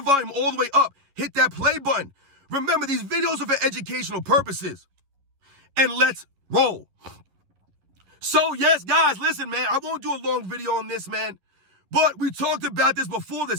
volume all the way up. Hit that play button. Remember, these videos are for educational purposes. And let's roll. So, yes, guys, listen, man, I won't do a long video on this, man. But we talked about this before the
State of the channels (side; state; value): left; late; 11 ms